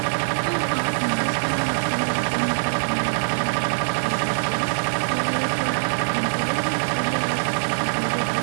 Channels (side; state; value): left; silent; 63 dB below the other